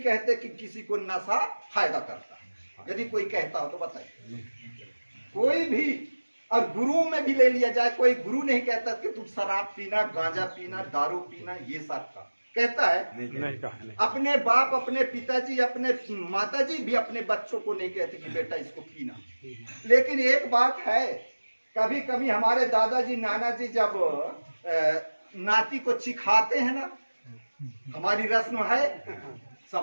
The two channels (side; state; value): both; inverted; correlation -1.00